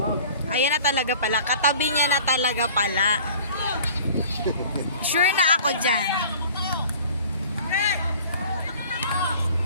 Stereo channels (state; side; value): inverted; both; correlation -0.47